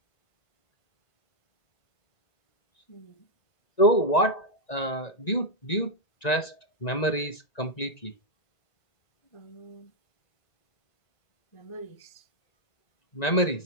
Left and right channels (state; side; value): late; right; 1.9 ms